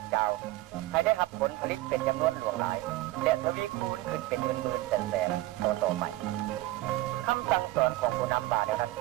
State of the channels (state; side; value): quieter; left; 17.7 dB